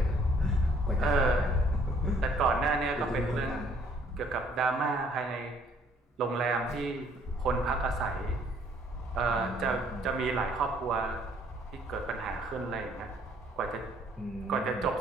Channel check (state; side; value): normal; both; correlation 0.62